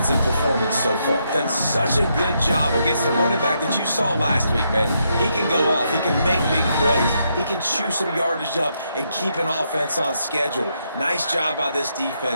performance so far. Done such a good job against the running back that you saw last week, man. He can go off. He can make big plays. He can chew some yardage up and keep an offense on schedule. Nice job by this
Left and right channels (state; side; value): inverted; both; correlation -0.79